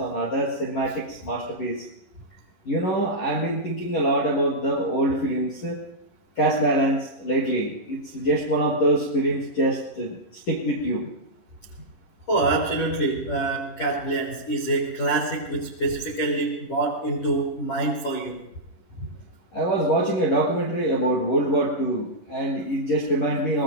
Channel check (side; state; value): right; late; 11 ms